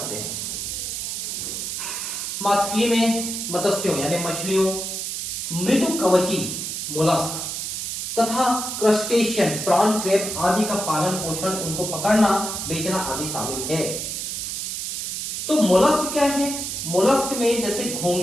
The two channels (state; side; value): noise; right; hiss, 4 dB below the sound